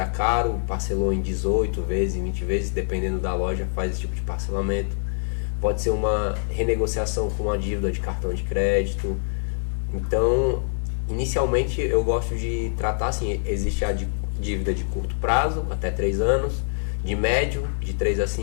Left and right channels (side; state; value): right; silent; 56 dB below the other